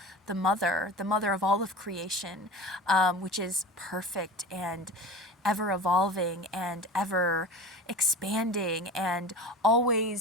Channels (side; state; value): both; normal; correlation 0.34